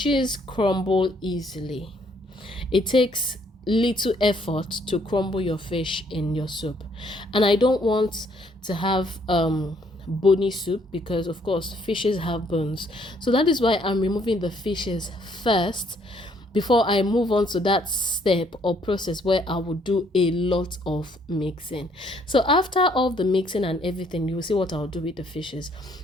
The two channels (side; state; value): both; normal; correlation 0.66